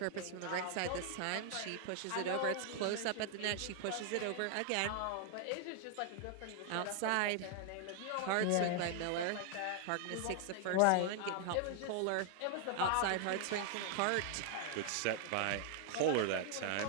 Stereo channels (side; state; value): both; different; correlation 0.00